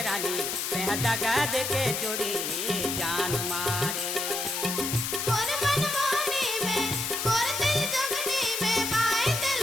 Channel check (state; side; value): noise; left; hiss, 2 dB below the sound